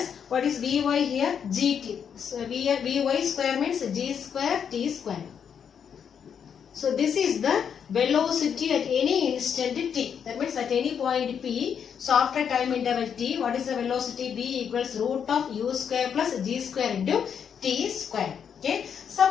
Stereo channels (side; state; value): right; quieter; 7.6 dB